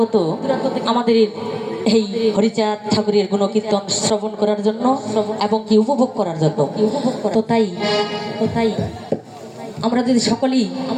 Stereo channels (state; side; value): identical; both; correlation 1.00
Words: আমাদের এই হরিচাঁদ ঠাকুরের গুণকীর্তন শ্রবণ করার জন্য এবং কি উপভোগ করার জন্য। তো তাই আমরা যদি সকলেই